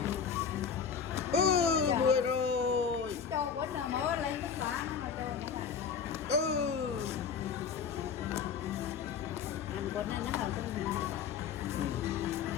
10 rồi. Cho quýnh rồi mới lên tất cả nó anh quýnh nó hồi cái gì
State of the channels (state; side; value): quieter; right; 6.8 dB